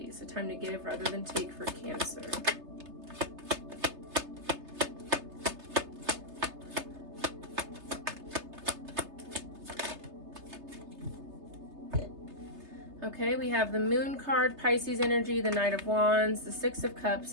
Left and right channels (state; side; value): late; left; 3.3 ms